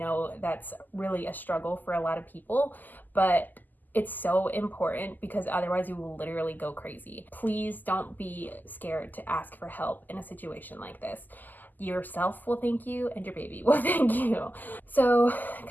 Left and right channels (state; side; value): late; right; 0.085 ms